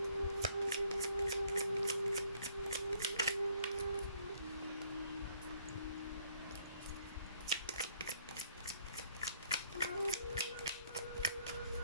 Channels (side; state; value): both; inverted; correlation -0.64